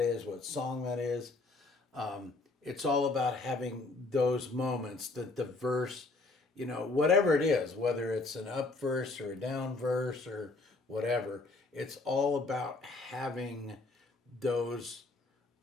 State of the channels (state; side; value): quieter; right; 3.4 dB